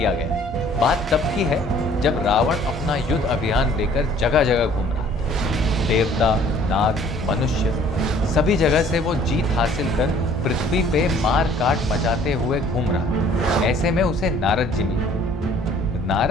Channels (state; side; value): normal; both; correlation 0.55